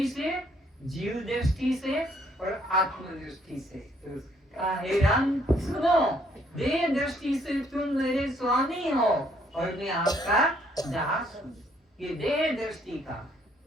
से, जीव दृष्टि से और आत्म दृष्टि से। तो हे राम सुनो, देह दृष्टि से तुम मेरे स्वामी हो और मैं आपका दास हूँ, ये देह दृष्टि का।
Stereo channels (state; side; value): normal; both; correlation 0.67